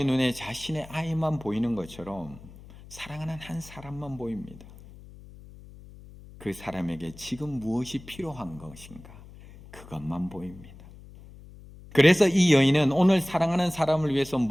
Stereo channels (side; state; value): left; noise; hum, 19 dB below the sound